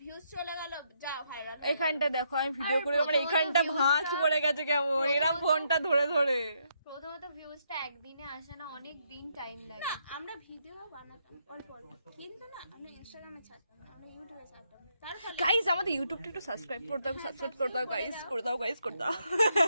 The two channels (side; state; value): both; inverted; correlation -0.76